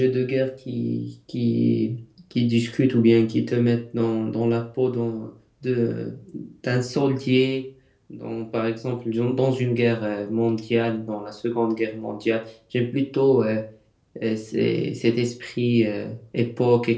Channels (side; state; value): both; identical; correlation 1.00